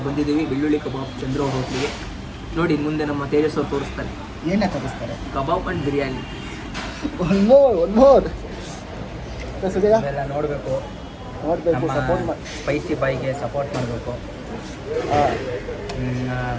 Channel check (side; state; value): both; identical; correlation 1.00